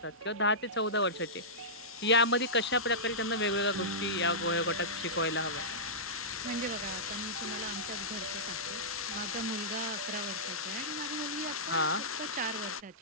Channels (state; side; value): normal; both; correlation -0.16